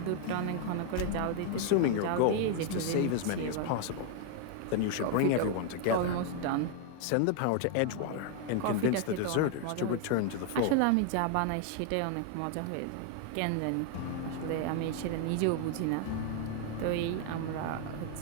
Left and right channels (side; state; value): both; different; correlation 0.00